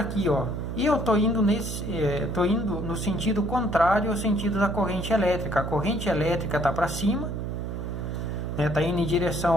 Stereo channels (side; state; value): right; noise; hum, 4 dB below the sound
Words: ó. E eu tô indo no sentido contrário ao sentido da corrente elétrica. A corrente elétrica tá para cima, né? Tá indo em direção